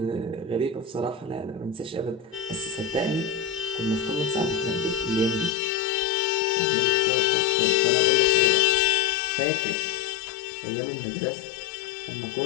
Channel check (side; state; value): right; drops out; at 5.5 s